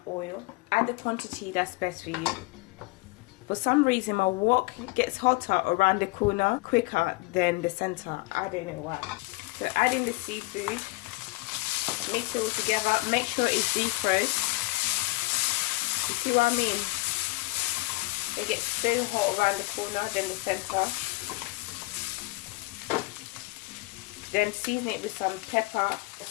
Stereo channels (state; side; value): quieter; right; 23.1 dB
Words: oil. Add the quantity that's best for you. For some reason my wok gets hotter around the corner quicker than the center. I don't know why. So add in the seafood. Mix it all together. Make sure it's defrosted. You see what I mean? It gets so hot around the corner than the center. Then season it with some pepper,